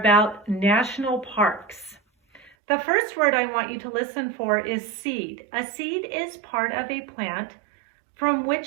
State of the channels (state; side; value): drops out; left; at 2.5 s